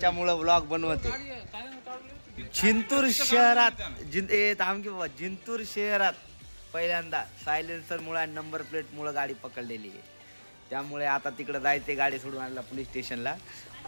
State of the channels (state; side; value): inverted; both; correlation -1.00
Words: व्लॉग बनवते. जिंतूर शहरात पहिल्यांदा सायलेन्सर मुळे आणि नंबर प्लेट मुळे गाडी पकडलेली आहे. त्यामुळे आता तिकडे जायचे गाडी सोडून आणला पोलीस स्टेशनला.